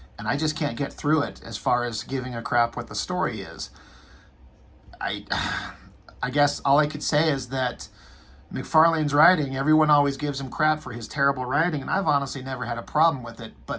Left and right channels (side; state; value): both; identical; correlation 1.00